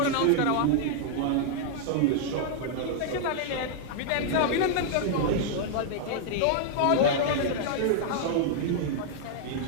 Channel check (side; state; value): both; different; correlation -0.01